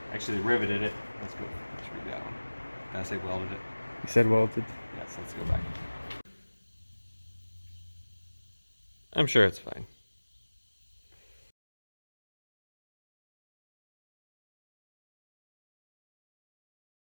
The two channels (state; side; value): inverted; both; correlation -1.00